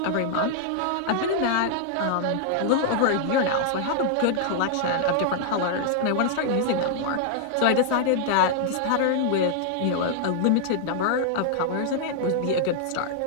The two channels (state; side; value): different; both; correlation 0.00